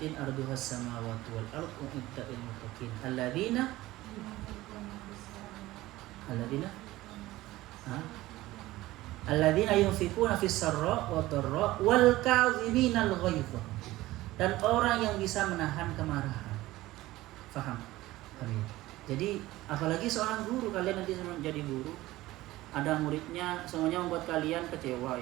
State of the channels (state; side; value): quieter; left; 17.4 dB